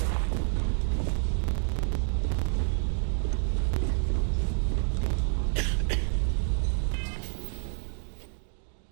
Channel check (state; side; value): silent; left; 58 dB below the other